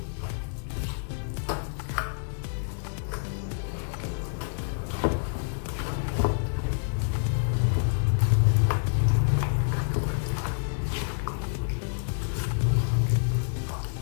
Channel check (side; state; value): right; silent; digital silence